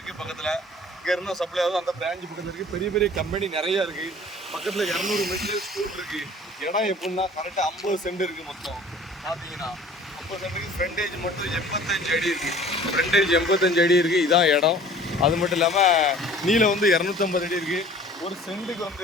பக்கத்தில். இங்கே இருந்தால் சப்ளை ஆகுது அந்த பிரான்ச் பக்கத்தில் இருக்குது. பெரிய பெரிய கம்பெனி நிறையா இருக்குது. பக்கத்தில் 200 மீட்டர் ஸ்கூல் இருக்குது. இடம் எப்படின்னா கரெக்டாக 50 சென்ட் இருக்குது மொத்தம். பார்த்தீங்கன்னா 50 சென்ட்டுக்கு ஃப்ரண்டேஜ் மட்டும் 85 அடி இருக்குது. ஃப்ரண்டேஜ் 85 அடி இருக்குது. இதான் இடம். அது மட்டும் இல்லாமல் நீளம் வந்து 250 அடி இருக்குது. ஒரு சென்ட்டுக்கு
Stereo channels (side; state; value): both; normal; correlation 0.48